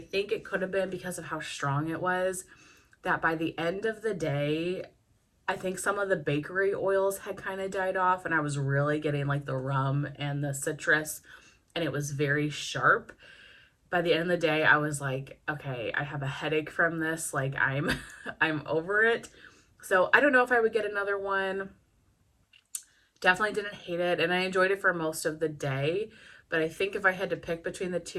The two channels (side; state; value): both; identical; correlation 1.00